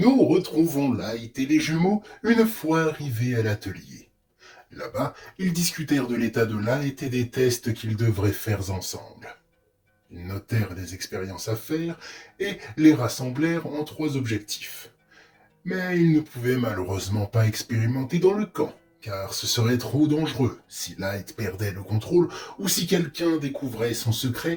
retrouvons Light et les jumeaux une fois arrivés à l'atelier. Là-bas, ils discutèrent de l'état de Light et des tests qu'ils devraient faire ensemble. Ils notèrent les expériences à faire et les rassemblèrent en trois objectifs. Mais ils ne pouvaient malheureusement pas expérimenter dans le camp, car ce serait trop dangereux si Light perdait le contrôle ou si quelqu'un découvrait son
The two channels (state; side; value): identical; both; correlation 1.00